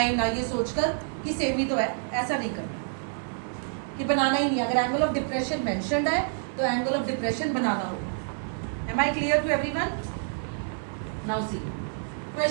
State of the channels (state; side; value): silent; left; digital silence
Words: ना ये सोचकर कि सेम ही तो है, ऐसा नहीं करना कि बनाना ही नहीं. अगर एंगल ऑफ डिप्रेशन मेंशन्ड है तो एंगल ऑफ डिप्रेशन बनाना होगा. Am I clear to everyone? Now see